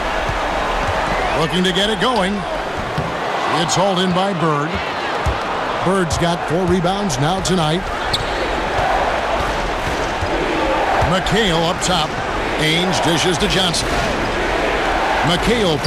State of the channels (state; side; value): identical; both; correlation 1.00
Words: Looking to get it going. It's hauled in by Bird. Bird's got 4 rebounds now tonight. McHale up top. Ainge dishes to Johnson. McHale